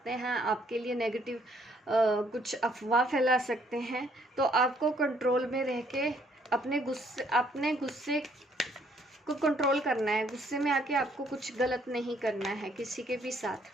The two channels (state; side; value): normal; both; correlation 0.66